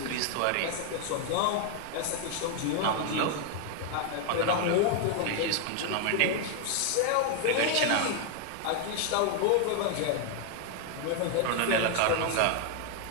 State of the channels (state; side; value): different; both; correlation 0.00